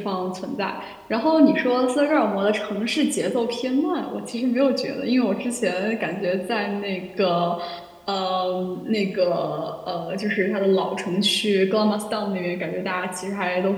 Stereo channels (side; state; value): both; identical; correlation 1.00